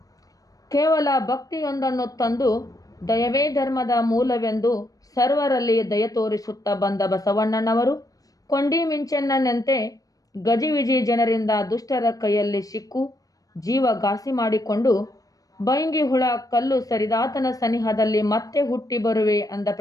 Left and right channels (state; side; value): late; right; 0.17 ms